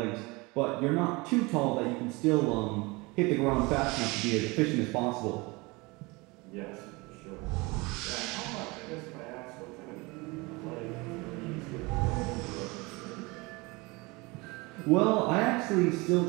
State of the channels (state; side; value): quieter; left; 25.1 dB